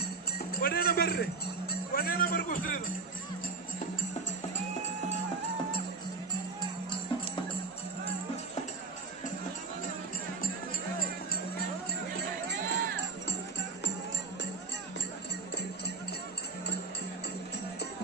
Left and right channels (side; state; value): left; quieter; 4.3 dB